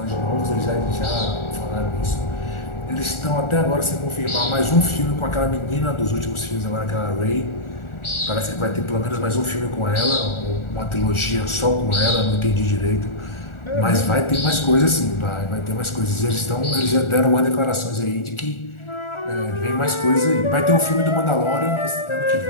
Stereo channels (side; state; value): right; late; 1.4 ms